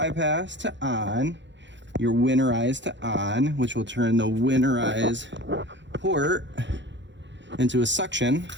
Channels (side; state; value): left; late; 0.53 ms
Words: to on, your winterize to on, which will turn the winterize port into a suction,